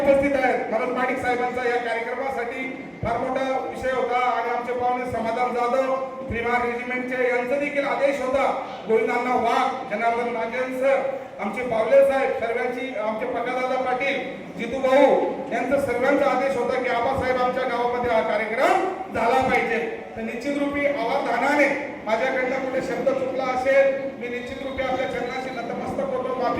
आहेत. मनोज महाडिक साहेबांचा या कार्यक्रमासाठी फार मोठा विषय होता आणि आमचे पाहुणे समाधान जाधव त्रिमार रेजिमेंटचे यांचा देखील आदेश होता. गोविंदांना वाघ, जनार्दन नागेन सर, आमचे पावले साहेब, सर्वांची आमचे पकादादा पाटील, जितू भाऊ यांचा सर्वांचा आदेश होता की आबासाहेब आमच्या गावामध्ये हा कार्यक्रम झाला पाहिजे. तर निश्चित रूपी अवधानाने माझ्याकडनं कुठे शब्द चुकला असेल मी निश्चित रूपी आपल्या चरणाशी नतमस्तक होतो,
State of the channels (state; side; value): identical; both; correlation 1.00